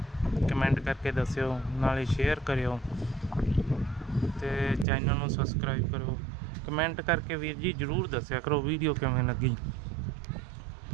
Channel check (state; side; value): drops out; left; at 4.9 s